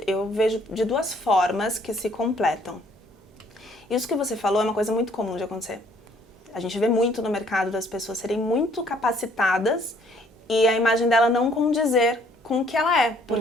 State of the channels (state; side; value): normal; both; correlation 0.62